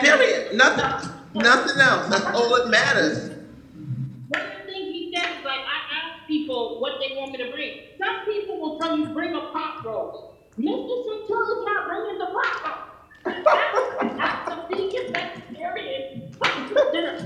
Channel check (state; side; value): identical; both; correlation 1.00